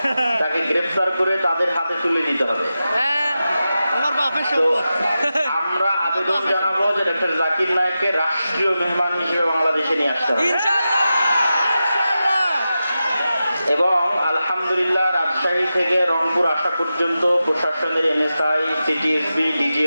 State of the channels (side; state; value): both; inverted; correlation -0.92